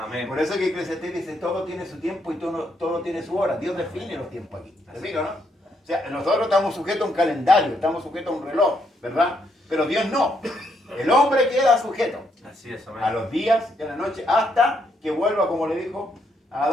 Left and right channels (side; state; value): both; normal; correlation 0.75